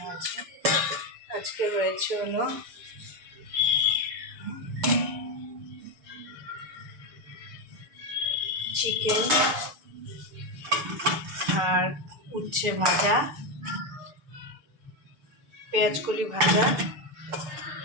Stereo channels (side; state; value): left; late; 6.8 ms